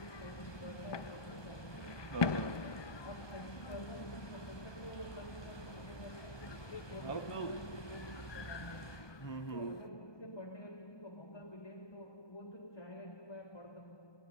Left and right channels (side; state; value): right; late; 1.2 ms